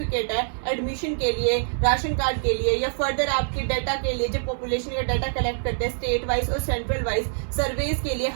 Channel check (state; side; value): silent; left; 62 dB below the other